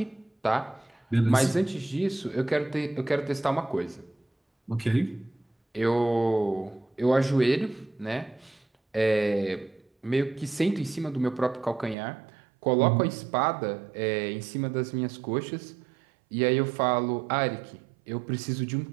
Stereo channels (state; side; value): drops out; left; at 12.0 s